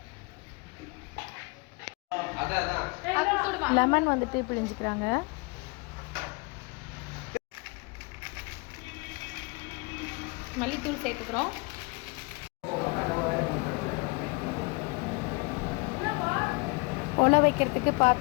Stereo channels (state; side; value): quieter; right; 28.7 dB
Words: லெமன் வந்துட்டு பிழிஞ்சிக்கிறாங்க. மல்லித்தூள் சேர்த்துக்கிறோம். ஒலை வைக்கிறதுக்கு